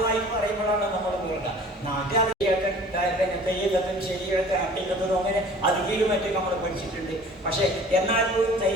പറയുമ്പോഴാണ് നമ്മൾ കേൾക്കുക. നാട്ടിൽ തെയ്യത്തും ശരിയൊക്കെ അട്ടിക്കത്തും അങ്ങനെ അധികം മറ്റും നമ്മൾ പഠിച്ചിട്ടുണ്ട്. പക്ഷേ എന്നാൽ പോലും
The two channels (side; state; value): both; normal; correlation 0.47